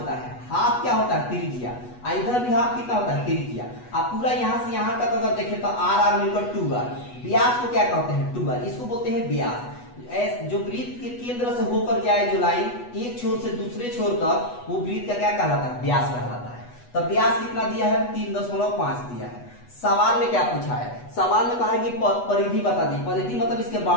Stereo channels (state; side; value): late; right; 8.2 ms